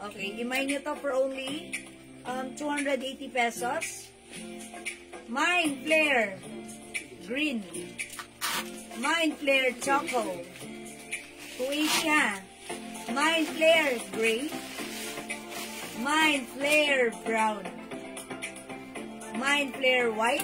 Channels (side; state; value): both; identical; correlation 1.00